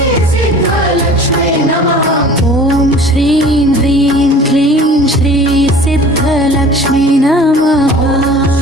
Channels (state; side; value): normal; both; correlation 0.45